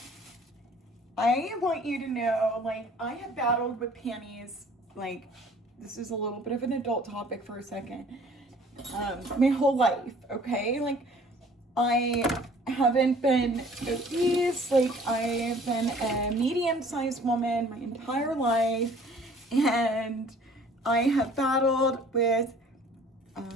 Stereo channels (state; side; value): normal; both; correlation 0.52